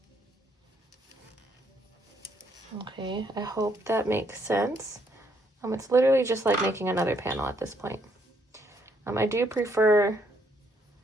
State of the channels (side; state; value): both; normal; correlation 0.71